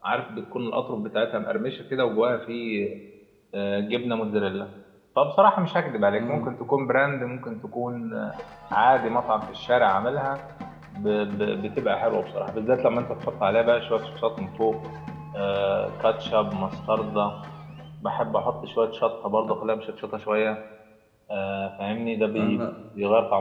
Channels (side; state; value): both; identical; correlation 1.00